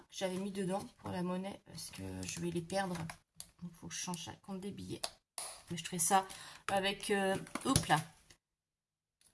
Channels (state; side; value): identical; both; correlation 1.00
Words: que j'avais mis dedans pour la monnaie, parce que je vais les perdre. Donc il faut que je change ça compte des billets. Mais je ferai ça avec... hop là.